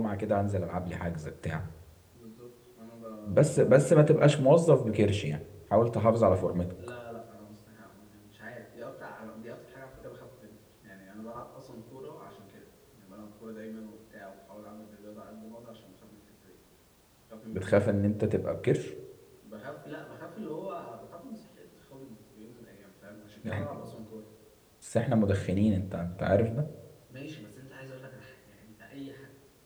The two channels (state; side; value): identical; both; correlation 1.00